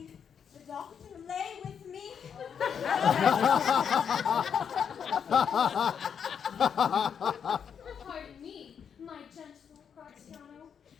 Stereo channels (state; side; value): quieter; right; 7.5 dB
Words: the doctor lay with me. Pardon me, my gentle Gratiano,